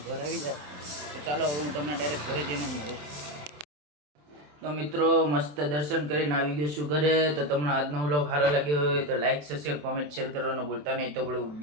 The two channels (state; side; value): late; left; 27 ms